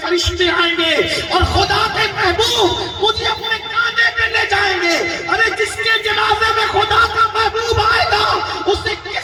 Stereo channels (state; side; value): identical; both; correlation 1.00